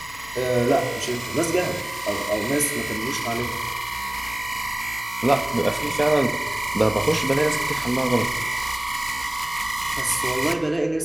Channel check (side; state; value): left; noise; hum, 21 dB below the sound